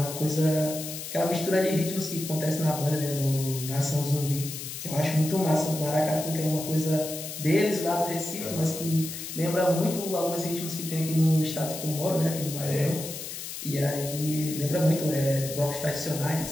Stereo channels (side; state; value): left; noise; hiss, 8 dB below the sound